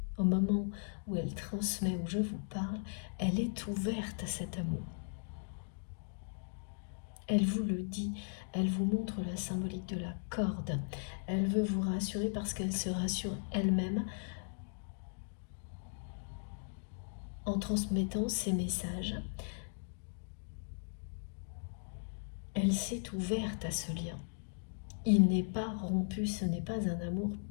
Au moment où elle transmet, où je vous parle, elle est ouverte à cet amour. Elle vous le dit, elle vous montre la symbolique de la corde. Elle veut vous rassurer parce qu'elle se rassure elle-même en transmettant ces messages. Elle s'est ouverte à ce lien. Il n'est pas rompu, ce n'est pas un amour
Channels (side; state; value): right; silent; digital silence